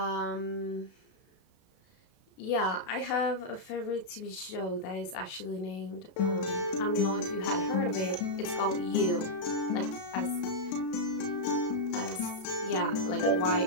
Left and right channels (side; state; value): right; late; 32 ms